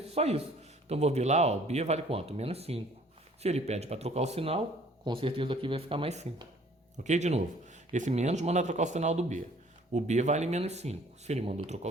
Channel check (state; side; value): normal; both; correlation 0.56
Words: Só isso. Então, vou ver lá, ó, b vale quanto? Menos 5. Se ele pede para trocar o sinal, com certeza aqui vai ficar mais 5. Ok? De novo. Esse menos manda trocar o sinal do b. O b vale menos 5. Se ele mandou trocar